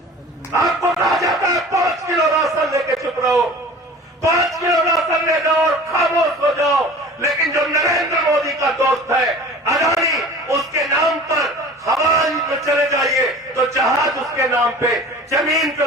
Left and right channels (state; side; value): normal; both; correlation 0.41